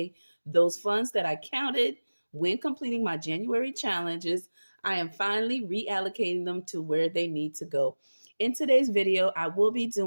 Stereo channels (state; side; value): inverted; both; correlation -1.00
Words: those funds that I counted when completing my January challenges, I am finally reallocating them to where they need to go. In today's video, I will be